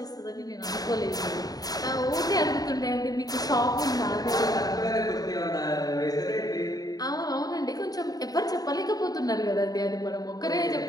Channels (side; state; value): right; late; 0.18 ms